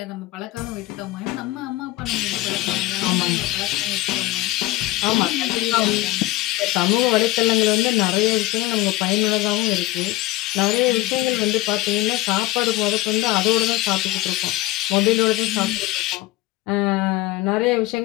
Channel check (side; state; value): right; quieter; 17.5 dB